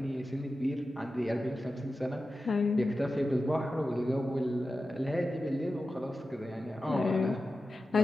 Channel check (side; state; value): both; normal; correlation 0.93